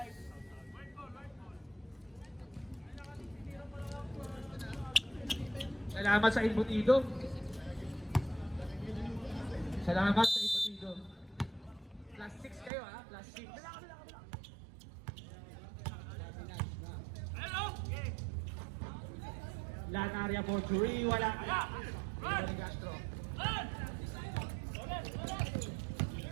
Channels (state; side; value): drops out; left; at 12.7 s